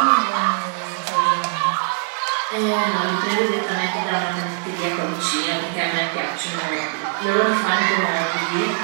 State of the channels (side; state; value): left; quieter; 36.7 dB